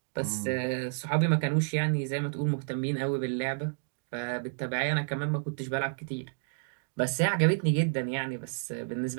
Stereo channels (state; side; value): silent; left; digital silence